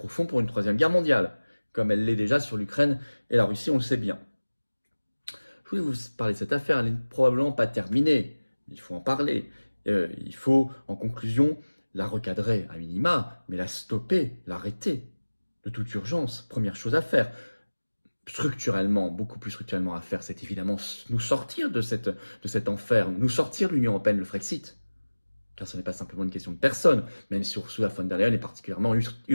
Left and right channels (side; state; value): both; inverted; correlation -1.00